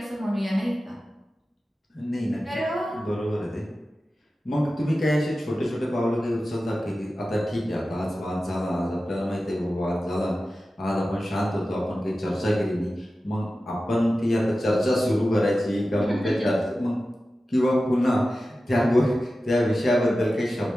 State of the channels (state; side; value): normal; both; correlation 0.94